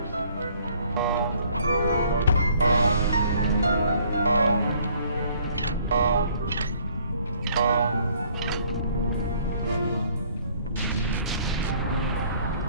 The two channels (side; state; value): both; inverted; correlation -0.61